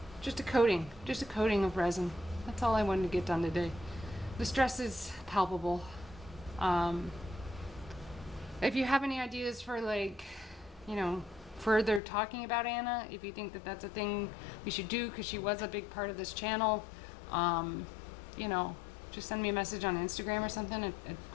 just a coating of resin. That's all I wanted to get done today. The stress is palpable. If you have any ideas for, like, you know, further talking about Anna, if you think that that's a thing we should do, because she was a big part of this channel, you know, just send me a message on Instagram or something, a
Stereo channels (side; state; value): right; drops out; at 12.0 s